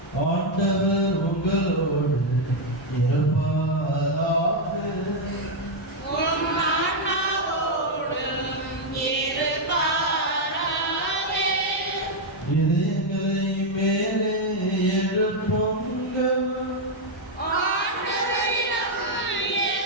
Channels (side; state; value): both; normal; correlation 0.01